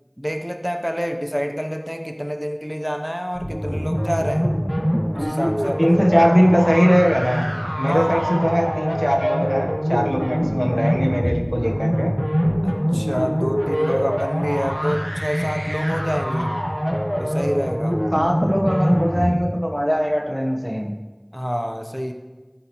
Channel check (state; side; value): identical; both; correlation 1.00